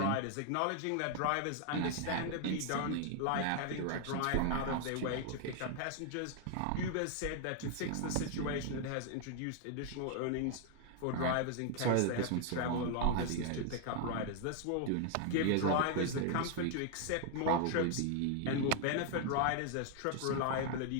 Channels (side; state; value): both; different; correlation 0.00